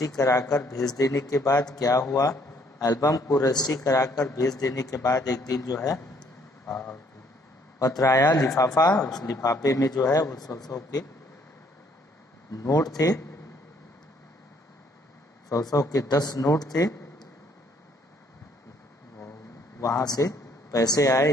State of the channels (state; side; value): normal; both; correlation 0.65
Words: कराकर भेज देने के बाद क्या हुआ? एल्बम को रजिस्ट्री कराकर भेज देने के बाद एक दिन जो है पत्र आया, लिफाफा। उस लिफाफे में जो है वो 100 के नोट थे, 100 के 10 नोट थे। वहां से पैसे आए